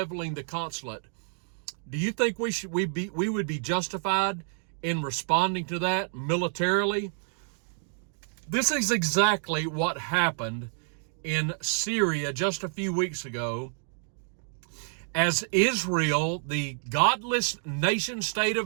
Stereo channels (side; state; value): left; silent; 59 dB below the other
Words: the consulate. Do you think we would be justified in responding to that militarily? This is exactly what happened in Syria just a few weeks ago, as Israel, the godless nation state